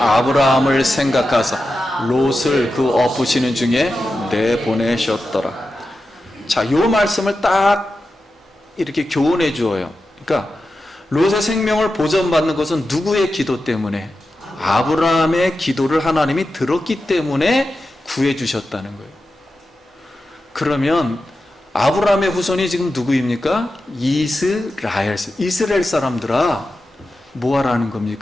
생각하사 롯을 그 엎으시는 중에 내보내셨더라. 자, 이 말씀을 딱 이렇게 교훈해 주어요. 그러니까 롯의 생명을 보전받는 것은 누구의 기도 때문에? 아브라함의 기도를 하나님이 들었기 때문에 구해 주셨다는 거예요. 그러면 아브라함의 후손이 지금 누구입니까? 이스라엘 사람들아, 뭐 하라는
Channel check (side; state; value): both; normal; correlation 0.91